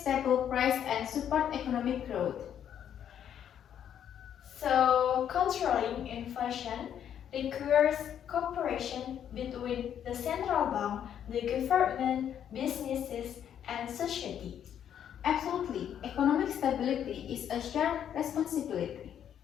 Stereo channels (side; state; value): right; quieter; 9.5 dB